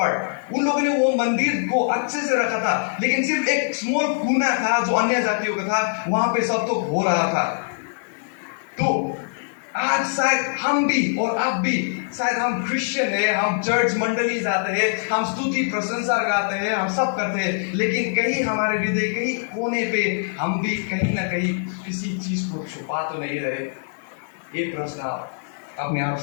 उन लोगों ने वो मंदिर को अच्छे से रखा था, लेकिन सिर्फ एक स्मॉल कोना था जो अन्य जातियों का था, वहां पे सब तो हो रहा था. तो आज शायद हम भी और आप भी, शायद हम क्रिश्चियन है, हम चर्च मंडली जाते हैं, हम स्तुति प्रशंसा गाते हैं, हम सब करते हैं, लेकिन कहीं हमारे हृदय कहीं कोने पे हम भी कहीं ना कहीं किसी चीज को छुपा तो नहीं रहे? ये प्रश्न अपने आप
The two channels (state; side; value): silent; right; digital silence